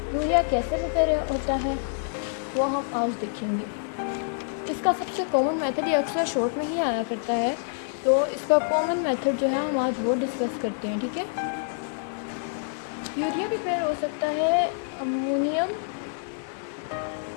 यूरिया कैसे प्रिपेयर होता है वो हम आज देखेंगे। इसका सबसे कॉमन मेथड ये अक्सर शॉर्ट में ही आया करता है, तो इसका कॉमन मेथड जो है हम आज वो डिस्कस करते हैं, ठीक है। यूरिया प्रिपेयर हो सकता है अमोनियम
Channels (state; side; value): silent; right; digital silence